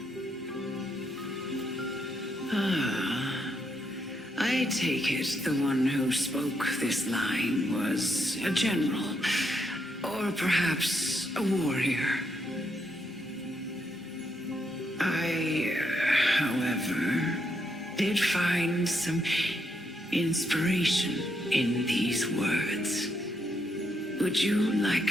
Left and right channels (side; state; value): both; normal; correlation 0.78